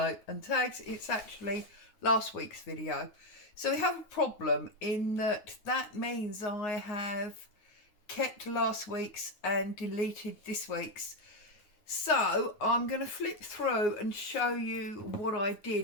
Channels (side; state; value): right; late; 9.6 ms